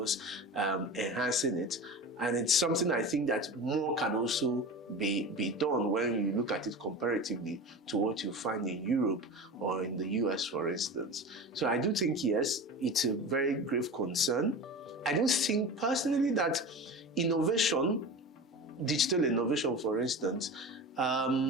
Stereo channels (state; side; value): normal; both; correlation 0.31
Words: enhancing it. And it's something I think that more can also be done when you look at it comparatively to what you find in Europe or in the US, for instance. So I do think, yes, it's a very grave concern. I do think personally that innovation, digital innovation, for instance,